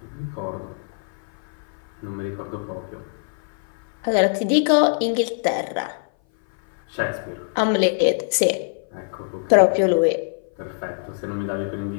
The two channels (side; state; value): right; silent; 58 dB below the other